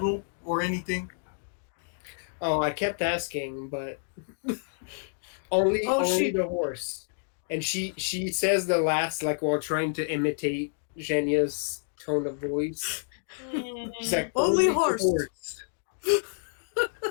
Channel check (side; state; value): right; silent; digital silence